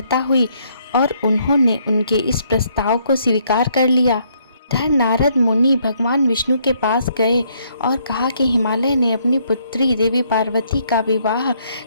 हुई और उन्होंने उनके इस प्रस्ताव को स्वीकार कर लिया। धन नारद मुनि भगवान विष्णु के पास गए और कहा कि हिमालय ने अपनी पुत्री देवी पार्वती का विवाह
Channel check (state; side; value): inverted; both; correlation -0.70